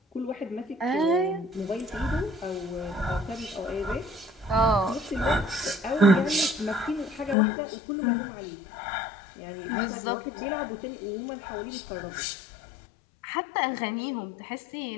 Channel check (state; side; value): drops out; right; at 7.4 s